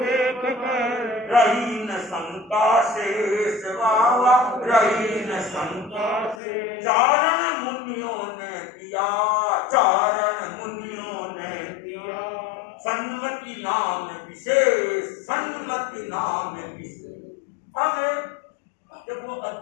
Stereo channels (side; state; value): right; drops out; at 6.4 s